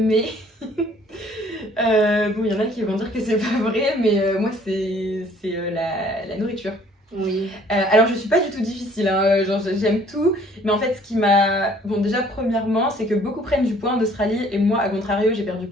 Bon, il y en a qui vont dire que c'est pas vrai, mais moi c'est la nourriture. Oui. Alors je suis pas du tout difficile, hein, genre j'aime tout, mais en fait ce qui m'a... Bon déjà premièrement c'est que beaucoup prennent du poids en Australie et moi à contrario j'ai perdu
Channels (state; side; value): normal; both; correlation 0.58